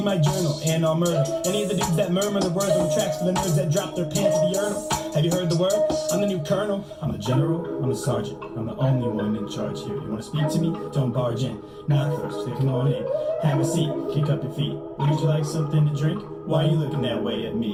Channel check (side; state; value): both; identical; correlation 1.00